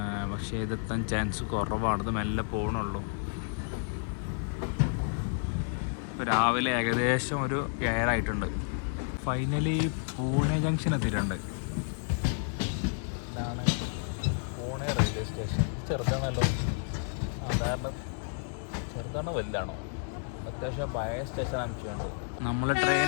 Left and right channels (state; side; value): silent; right; 57 dB below the other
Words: പക്ഷേ ഇതെത്താൻ ചാൻസ് കുറവാണ്. ഇത് മെല്ലെ പോകണുള്ളൂ. ഇപ്പോൾ രാവിലെ ഏകദേശം ഒരു 7 ആയിട്ടുണ്ട്. ഫൈനലി പൂനെ ജംഗ്ഷൻ എത്തിയിട്ടുണ്ട്. ഇതാണ് പൂനെ റെയിൽവേ സ്റ്റേഷൻ. ചെറുതാണല്ലോ, സാധാരണ ചെറുതാണോ വലുതാണോ? അത്യാവശ്യം പഴയ സ്റ്റേഷൻ അമിച്ചുണ്ട്. നമ്മൾ